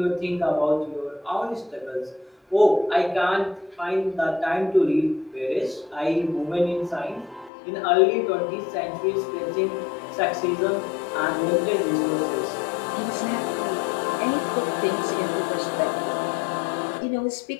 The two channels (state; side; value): drops out; right; at 7.5 s